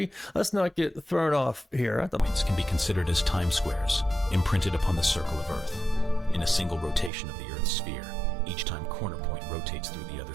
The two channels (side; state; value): left; drops out; at 7.1 s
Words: Let's not get thrown off here. Points can be considered as time squares, imprinted upon the circle of Earth. In a single rotation of the Earth's sphere, each time corner point rotates through the other